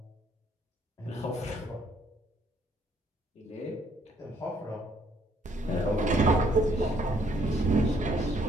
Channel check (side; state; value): both; normal; correlation 0.67